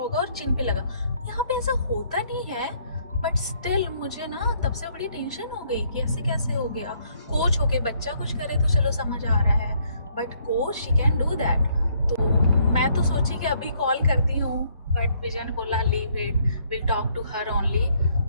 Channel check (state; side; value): inverted; both; correlation -0.68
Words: और चिन पे लगा. यहाँ पे ऐसा होता नहीं है, बट स्टिल मुझे ना तब से बड़ी टेंशन हो गई कि ऐसे कैसे हो गया. कोच होके बच्चा कुछ करे तो चलो समझ आ रहा है, but coach she can do that. तो मैं तो सोची कि अभी कॉल करती हूँ, बट विजय ने बोला leave it, will talk to her only.